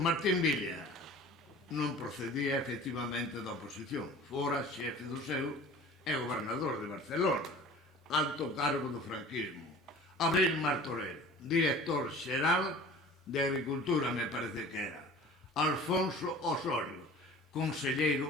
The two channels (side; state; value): both; normal; correlation 0.43